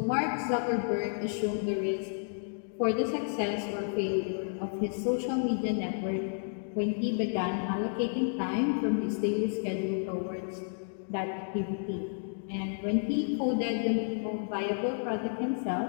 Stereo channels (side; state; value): right; silent; digital silence